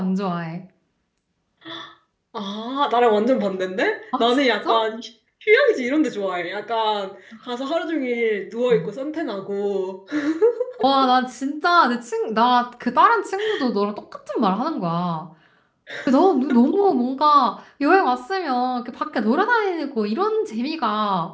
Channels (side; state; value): both; identical; correlation 1.00